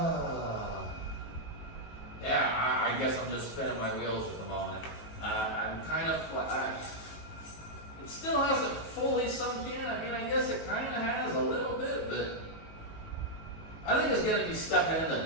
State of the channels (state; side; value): late; right; 19 ms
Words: yeah, I guess I'm just spinning my wheels at the moment. I'm kind of it still hasn't fully sunk in. I mean, I guess it kind of has a little bit, but I think it's gonna be stepping in the